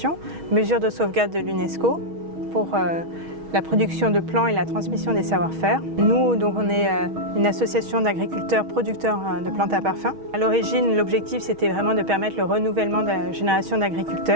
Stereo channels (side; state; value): left; late; 6.3 ms